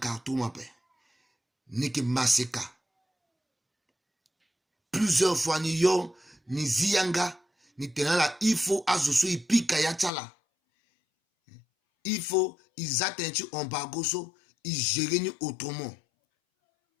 ape ni ki maseka plusieurs fois ni yo ni ziyanga ni tenala il faut azoso ipika ya chala il faut ils atteignent embargo so ils gèrent autrement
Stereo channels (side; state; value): right; drops out; at 10.1 s